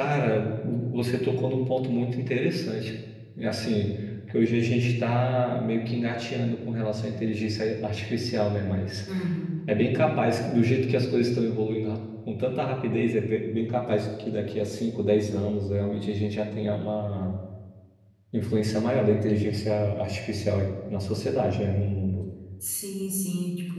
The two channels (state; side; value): identical; both; correlation 1.00